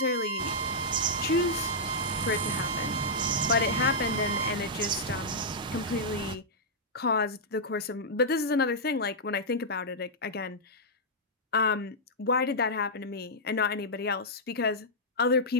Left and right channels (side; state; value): both; normal; correlation -0.09